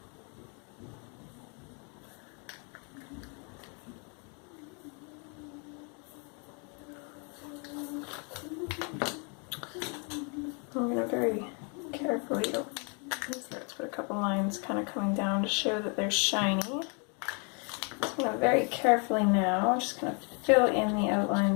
I'm going to very carefully, let's put a couple lines kind of coming down to show that they're shiny. I'm going to very carefully now, just going to fill in the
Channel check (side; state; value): right; quieter; 36.3 dB